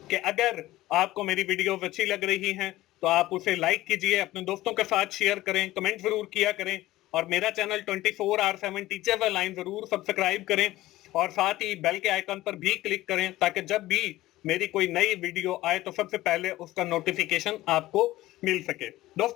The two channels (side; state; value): right; quieter; 16.6 dB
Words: कि अगर आपको मेरी वीडियोस अच्छी लग रही हैं तो आप उसे लाइक कीजिए, अपने दोस्तों के साथ शेयर करें, कमेंट जरूर किया करें और मेरा चैनल 24R7 टीचर लाइन जरूर सब्सक्राइब करें और साथ ही बेल के आइकन पर भी क्लिक करें ताकि जब भी मेरी कोई नई वीडियो आए तो सबसे पहले उसका नोटिफिकेशन आपको मिल सके।